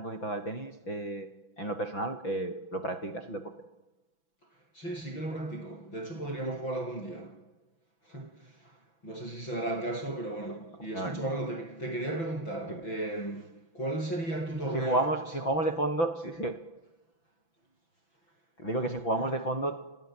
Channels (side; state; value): right; late; 6.0 ms